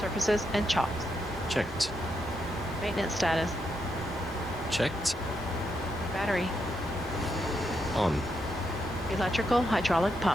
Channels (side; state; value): both; normal; correlation 0.81